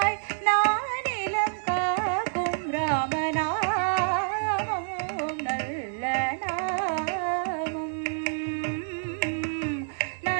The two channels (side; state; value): left; silent; digital silence